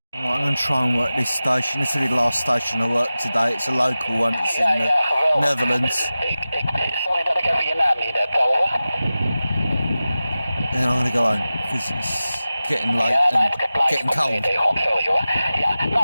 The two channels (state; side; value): inverted; both; correlation -0.95